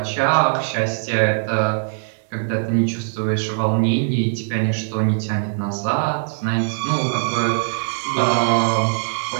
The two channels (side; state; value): left; silent; 65 dB below the other